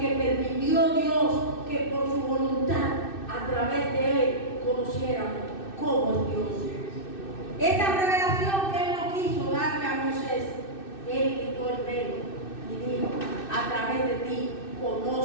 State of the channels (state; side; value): late; right; 2.6 ms